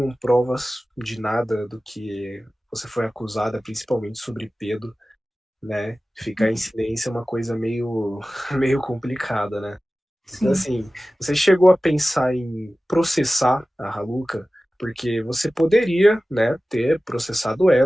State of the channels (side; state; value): both; normal; correlation 0.96